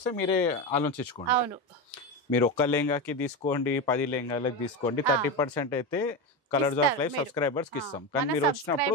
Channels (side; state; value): both; normal; correlation 0.17